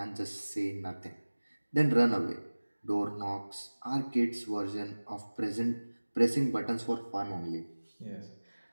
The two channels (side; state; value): both; inverted; correlation -1.00